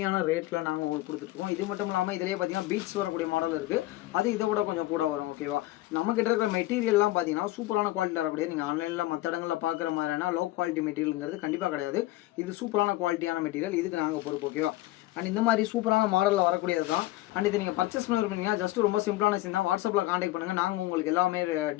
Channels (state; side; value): quieter; right; 17.1 dB